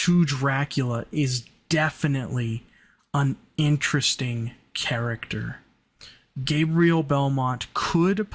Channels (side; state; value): both; identical; correlation 1.00